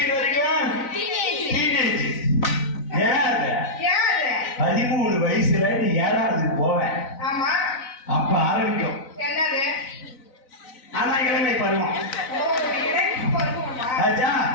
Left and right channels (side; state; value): right; late; 4.0 ms